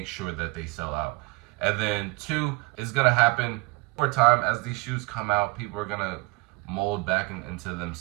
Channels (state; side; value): quieter; left; 25.5 dB